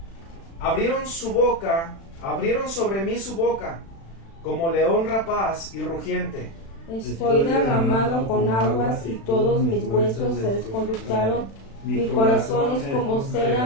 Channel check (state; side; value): late; right; 36 ms